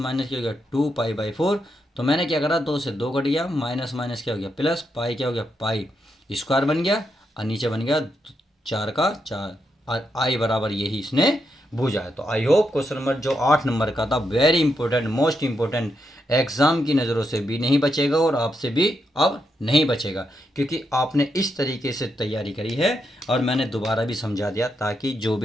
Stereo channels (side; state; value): both; normal; correlation 0.82